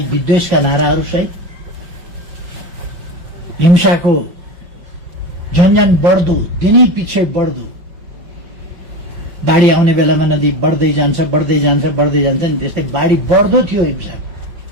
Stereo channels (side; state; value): left; late; 5.3 ms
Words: विद्वेषका नाराहरूसहित, हिंसाको झन्झन बढ्दो, दिनै पछि बढ्दो, बाढी आउने बेलामा नदी बढ्दै जान्छ नि त्यस्तै बाढी बढ्दो थियो हिंसा।